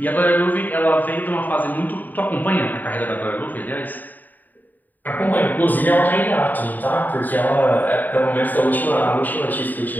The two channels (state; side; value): late; right; 0.086 ms